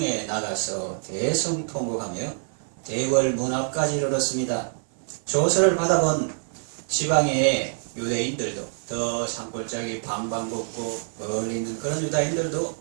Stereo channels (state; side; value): silent; left; 61 dB below the other